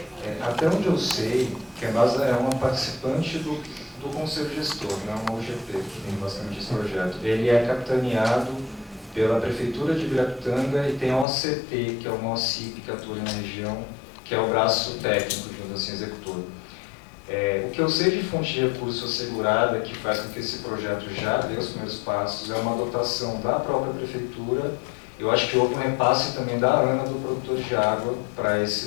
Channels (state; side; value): drops out; right; at 11.2 s